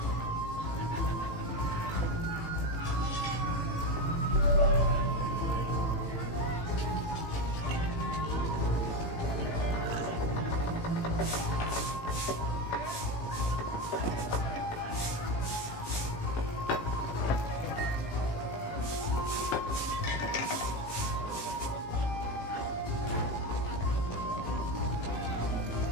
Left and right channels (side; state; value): right; late; 18 ms